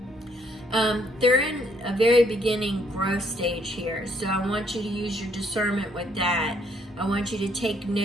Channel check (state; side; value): normal; both; correlation 0.68